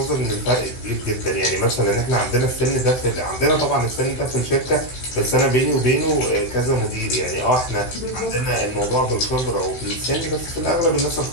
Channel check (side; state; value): right; late; 16 ms